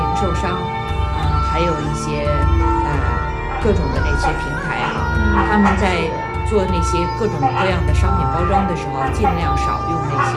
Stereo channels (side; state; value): both; identical; correlation 1.00